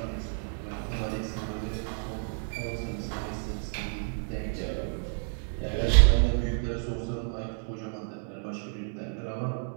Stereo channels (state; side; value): silent; left; 58 dB below the other